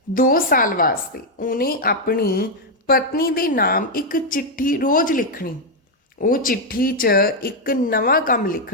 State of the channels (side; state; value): both; normal; correlation 0.00